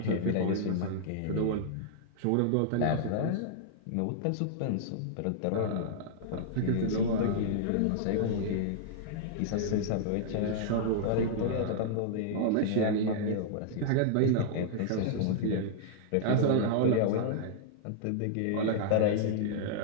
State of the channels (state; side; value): different; both; correlation -0.01